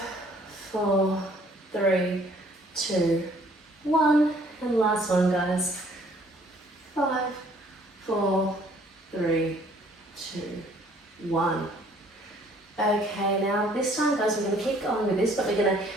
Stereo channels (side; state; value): both; normal; correlation 0.59